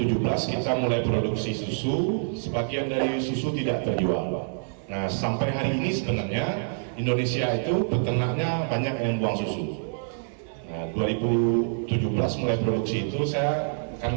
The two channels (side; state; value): left; silent; digital silence